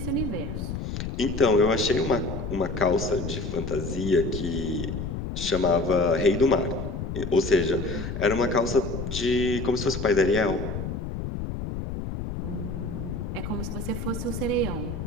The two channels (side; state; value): left; noise; rumble, 5 dB below the sound